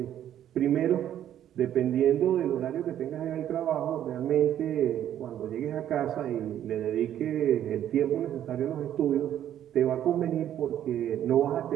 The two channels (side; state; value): left; quieter; 11.0 dB